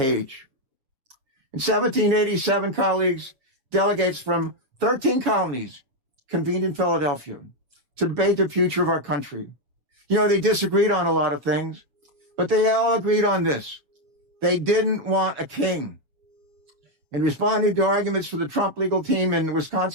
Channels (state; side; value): late; left; 7.3 ms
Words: In 1787, colleagues, delegates from 13 colonies convened in Philadelphia to debate the future of our country. You know, they disagreed on a lot of things, but they all agreed on this. They didn't want a king. In responding to arguments for the Trump legal team in